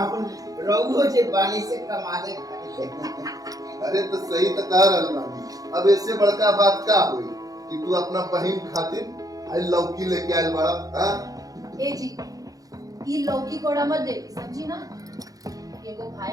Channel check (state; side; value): late; left; 0.17 ms